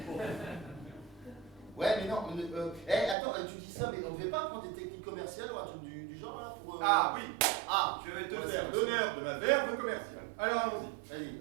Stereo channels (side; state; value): left; drops out; at 3.2 s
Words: Ouais, mais non, attends, tu dis ça, mais on devait pas prendre des techniques commerciales ou un truc du genre, là, pour... Ah oui, Ah, je vais te Ouais, faire c'est- l'honneur de ma verve commerciale. Alors allons-y.